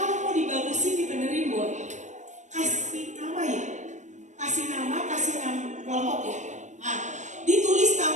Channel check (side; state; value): left; late; 0.35 ms